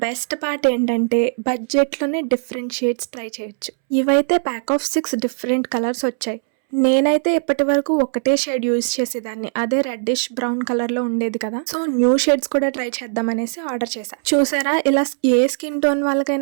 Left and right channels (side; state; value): left; silent; 66 dB below the other